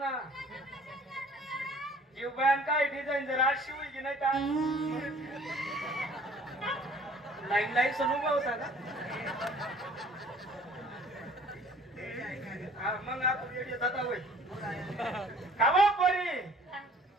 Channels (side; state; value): both; normal; correlation 0.52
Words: जीव बयान काय डिझाईन जर आज शिवली की नाही का लाईन सण उभा होता का हा मग आपण येडे जाता होय कावा पोरी